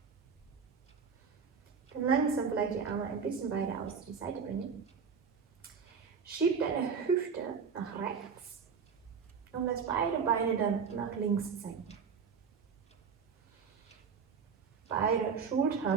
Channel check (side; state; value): left; quieter; 6.0 dB